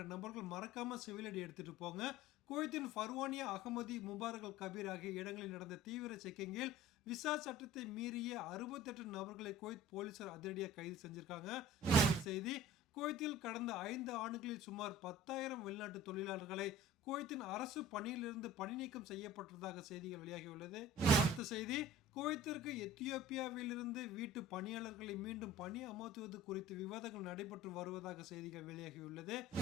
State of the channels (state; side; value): normal; both; correlation 0.43